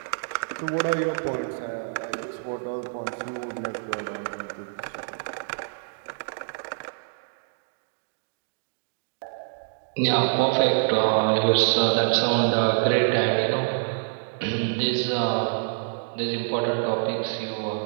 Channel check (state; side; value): silent; left; digital silence